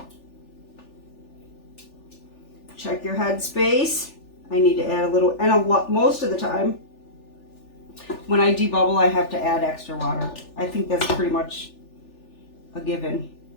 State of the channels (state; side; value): late; right; 3.4 ms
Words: Check your head space. I need to add a little, and a lot, most of the time when I debubble I have to add extra water. I think that's pretty much a given.